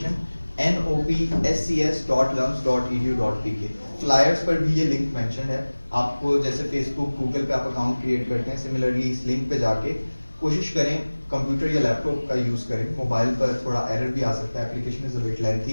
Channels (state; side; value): inverted; both; correlation -1.00